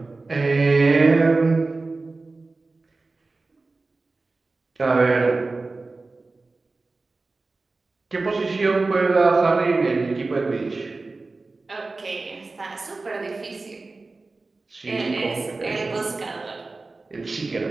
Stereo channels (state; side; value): quieter; left; 3.6 dB